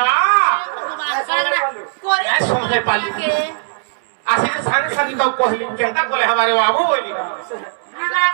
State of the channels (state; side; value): silent; left; 67 dB below the other